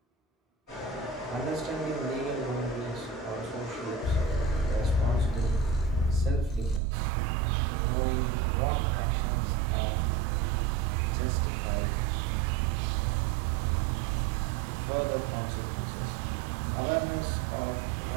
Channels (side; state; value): left; drops out; at 6.8 s